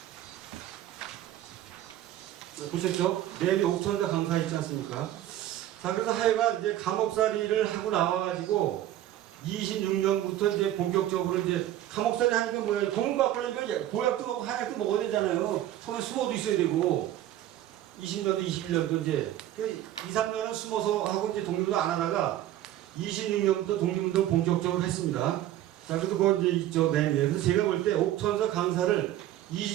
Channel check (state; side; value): quieter; left; 13.1 dB